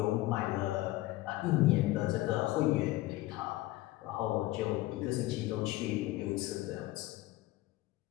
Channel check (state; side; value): quieter; right; 17.8 dB